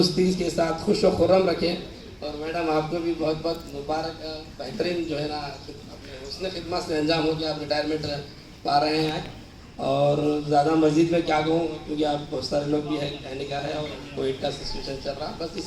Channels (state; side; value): identical; both; correlation 1.00